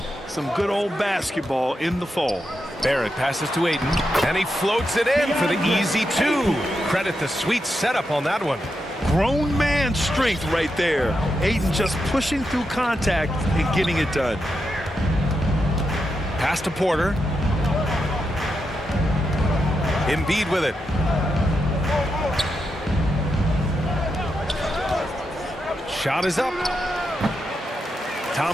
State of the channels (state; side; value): normal; both; correlation 0.85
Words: some good old basketball in the fall. Barrett passes to Ayton, and he floats it in for the easy 2. Credit the sweet setup on that one. Grown man strength right there. Ayton just pushing through contact and getting it done. Pass to Porter. Embiid with it. Shot is up.